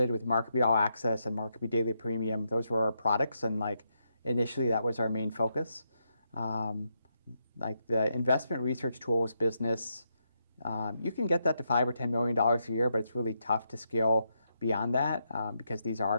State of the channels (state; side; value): inverted; both; correlation -0.81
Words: with MarketBeat All Access and MarketBeat Daily Premium. Those were our products, and like initially that was our main focus. Like the investment research tools business, you can get that to $5 or $10 million a year, but it's really tough to scale beyond that because these are